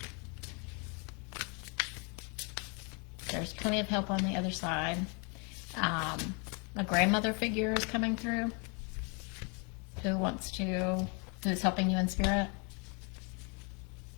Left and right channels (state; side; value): quieter; right; 34.4 dB